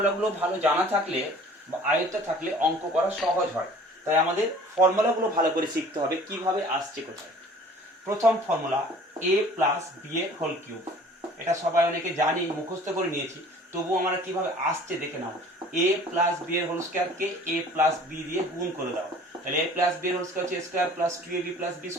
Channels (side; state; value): both; normal; correlation 0.49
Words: ভালো জানা থাকলে বা আয়ত্তে থাকলে অঙ্ক করা সহজ হয়, তাই আমাদের ফর্মুলাগুলো ভালো করে শিখতে হবে কিভাবে আসছে কোথায়। প্রথম ফর্মুলা a প্লাস বি এর হোল কিউব, এটা সবাই অনেকে জানি, মুখস্থ করে নিয়েছি, তবু আমরা কিভাবে আসছে দেখে নাও। a প্লাস বি এর হোল স্কোয়ারকে a প্লাস বি দিয়ে গুণ করে দাও, তাহলে a প্লাস বি এর হোল স্কোয়ার হচ্ছে square plus 2ab plus b